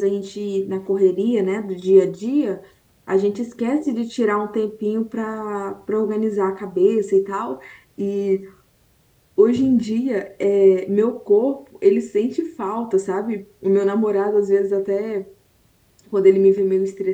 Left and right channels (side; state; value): both; identical; correlation 1.00